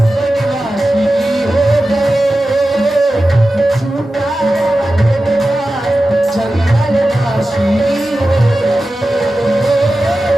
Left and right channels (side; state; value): both; normal; correlation 0.94